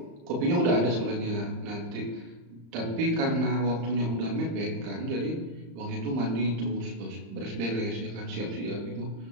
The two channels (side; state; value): left; late; 35 ms